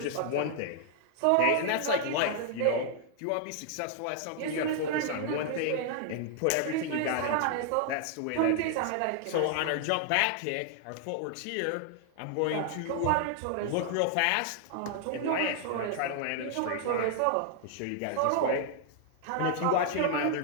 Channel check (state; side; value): different; both; correlation 0.00